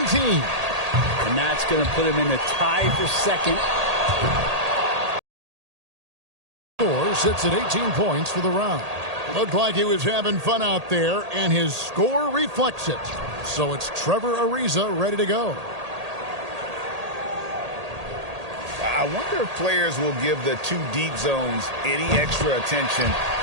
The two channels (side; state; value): left; late; 1.8 ms